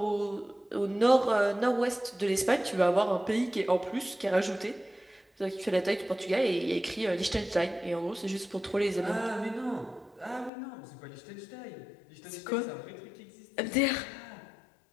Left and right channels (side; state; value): right; drops out; at 10.5 s